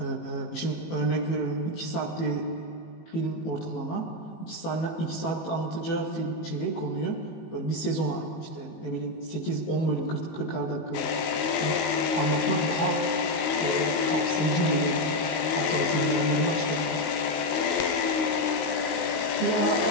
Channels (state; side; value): late; right; 19 ms